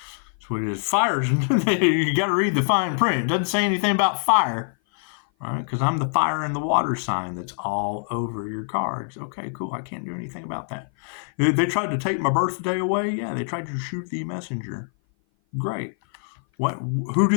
That's what it is. Fires, you got to read the fine print. It doesn't say anything about fire. Right? Because I'm the fire and the water sign that's all over your cards. Okay, cool. I can't do anything about that. They tried to take my birthday away. Yeah, they tried to shoot the messenger. Great. Who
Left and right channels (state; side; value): silent; right; 57 dB below the other